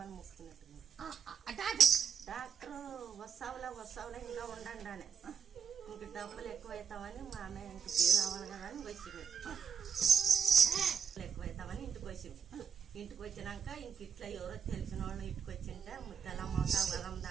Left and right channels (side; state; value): left; quieter; 6.9 dB